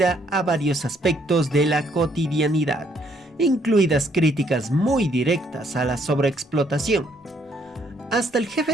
a varios aspectos de la cotidianidad, incluidas críticas muy directas a la sobreexplotación. Hasta el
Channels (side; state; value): both; normal; correlation 0.68